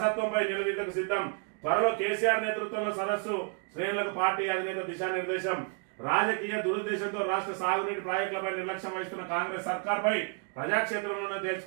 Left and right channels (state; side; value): quieter; left; 37.8 dB